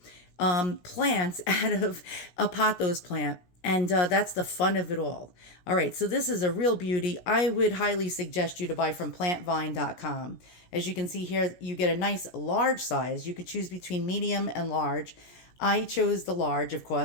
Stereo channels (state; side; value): late; right; 16 ms